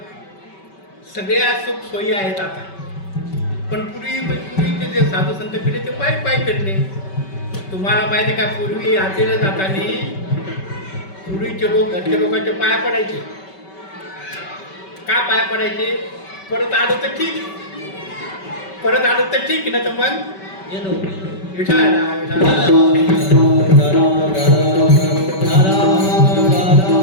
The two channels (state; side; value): late; right; 5.2 ms